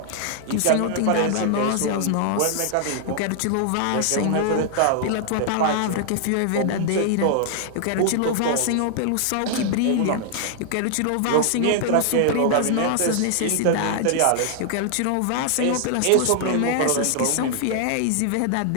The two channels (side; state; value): both; different; correlation 0.00